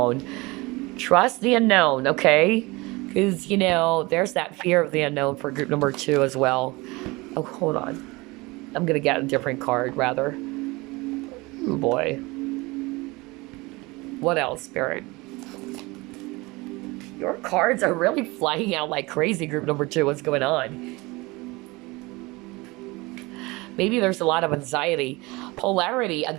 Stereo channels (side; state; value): left; quieter; 23.4 dB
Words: Trust the unknown, okay? Because, there's that fear of the unknown for group number 2 as well. Oh, hold on. I'm going to get a different card, rather. Oh boy. What else, Spirit? Your cards are really flying out like crazy, group number 2. What's going on? Maybe there's a lot of anxiety. Polarity.